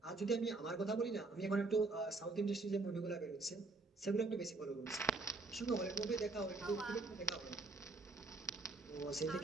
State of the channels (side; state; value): left; quieter; 3.4 dB